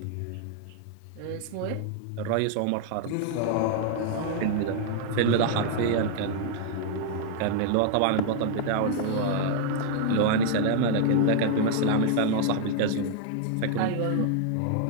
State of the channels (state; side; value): different; both; correlation 0.00